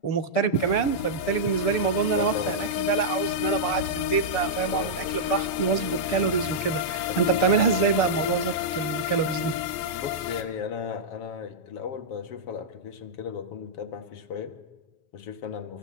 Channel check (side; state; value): right; late; 6.8 ms